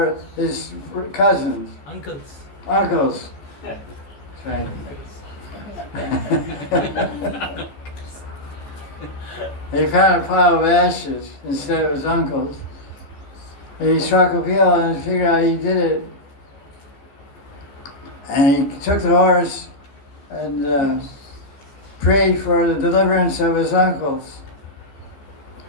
his cousins, Uncles. uncles. Right. He found a pile of ashes instead of his uncles. And he struck a pill and figured out he did it. And he took the horse and prayed for the deliverance of his uncles.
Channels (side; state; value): right; late; 14 ms